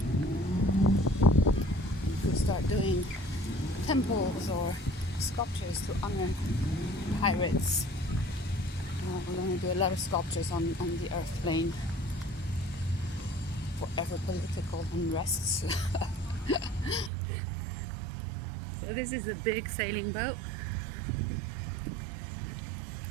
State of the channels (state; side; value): drops out; left; at 17.1 s